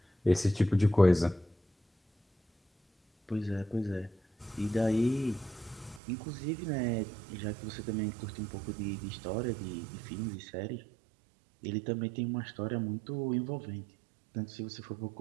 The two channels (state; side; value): drops out; left; at 6.0 s